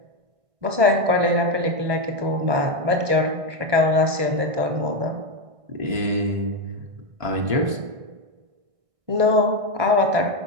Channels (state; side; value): late; left; 1.6 ms